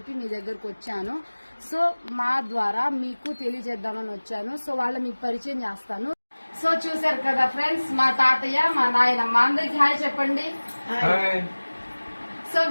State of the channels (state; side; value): inverted; both; correlation -1.00